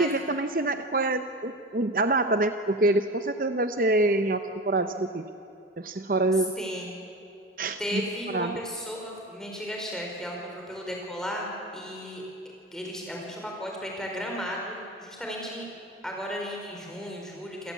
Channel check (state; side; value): normal; both; correlation 0.28